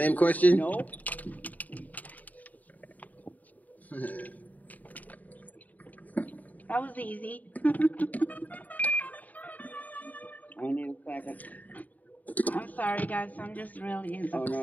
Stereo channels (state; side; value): late; right; 0.077 ms